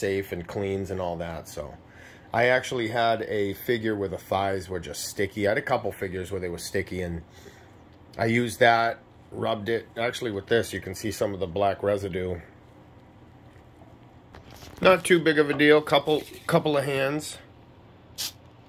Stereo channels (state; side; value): identical; both; correlation 1.00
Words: and cleans and all that. So I actually had a figure where the thighs were just sticky. I had a couple figures where they were sticky, and I used that, rubbed it. Actually with this you can see some of the black residue. Not too big of a deal, couple of hands.